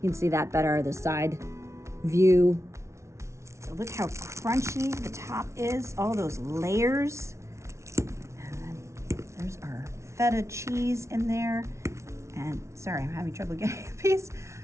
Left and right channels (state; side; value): late; left; 0.13 ms